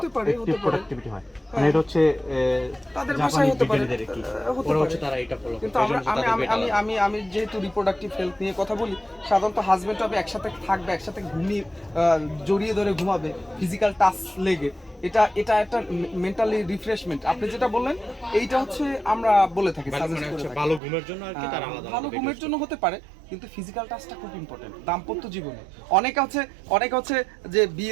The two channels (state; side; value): drops out; left; at 20.8 s